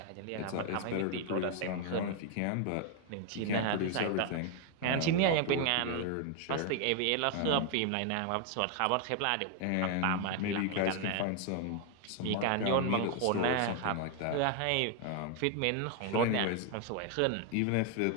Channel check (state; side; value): different; both; correlation 0.00